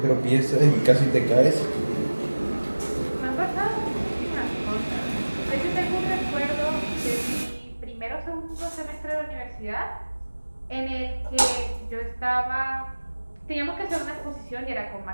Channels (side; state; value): both; inverted; correlation -1.00